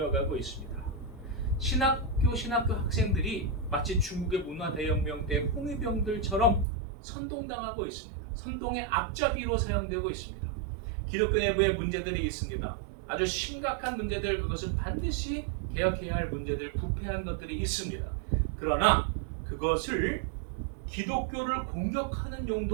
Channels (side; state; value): left; drops out; at 6.7 s